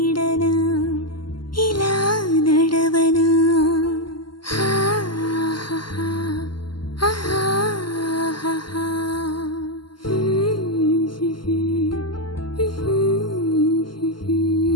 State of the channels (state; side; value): late; right; 0.72 ms